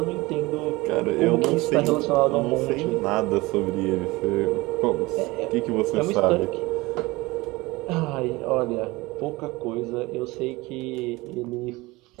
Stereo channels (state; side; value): quieter; left; 21.7 dB